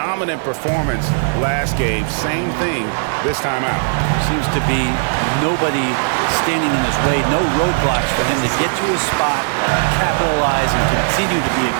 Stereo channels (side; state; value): left; silent; digital silence